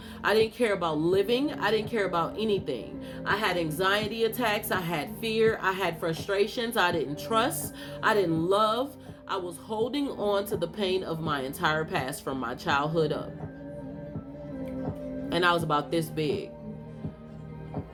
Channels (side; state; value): both; identical; correlation 1.00